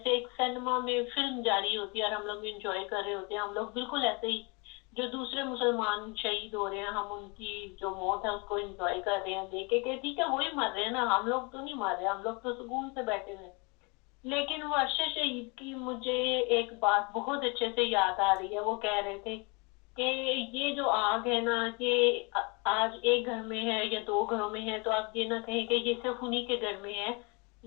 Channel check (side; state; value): right; quieter; 30.3 dB